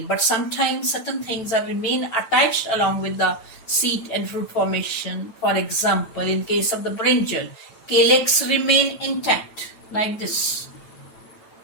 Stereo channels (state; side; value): late; right; 9.1 ms